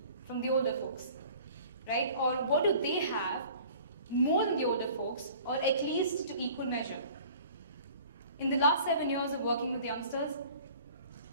from the older folks? Right? Or what do they have more than the older folks, or at least to equal measure? In the last 7 years of working with youngsters,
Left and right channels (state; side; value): inverted; both; correlation -0.48